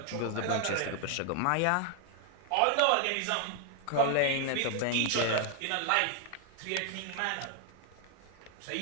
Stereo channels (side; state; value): both; different; correlation 0.00